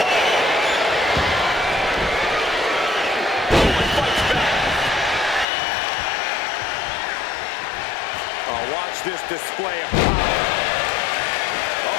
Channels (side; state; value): right; drops out; at 5.5 s